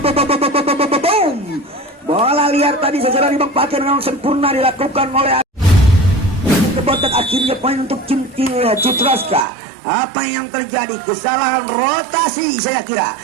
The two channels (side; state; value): left; drops out; at 9.5 s